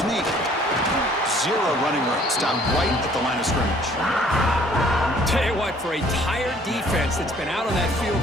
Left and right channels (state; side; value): normal; both; correlation 0.58